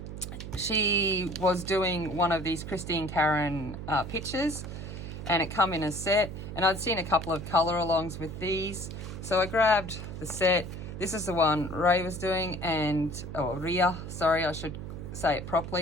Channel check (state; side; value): noise; right; hum, 9 dB below the sound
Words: She was doing one of these Christine Karen pictures, and it come in a set, and I'd seen a couple of color alongs with these, so I grabbed the set. This is the one Ray was doing, and Rea, sorry, I should say it